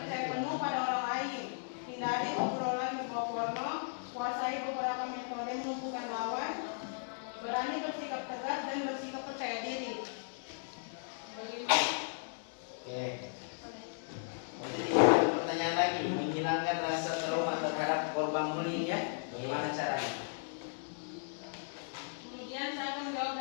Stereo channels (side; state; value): right; silent; 54 dB below the other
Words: penuh pada orang lain. Hindari obrolan berbau porno. Kuasai beberapa metode melumpuhkan lawan. Berani bersikap tegas dan bersikap percaya diri. Oke. Jadi ada pertanyaan lagi, menghilangkan rasa trauma terhadap korban bullying ya? Bagaimana caranya? Kemudian saya akan menjawab